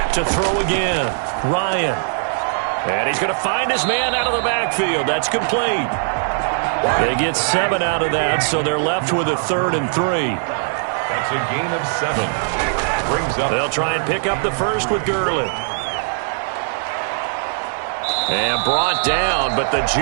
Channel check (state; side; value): silent; left; digital silence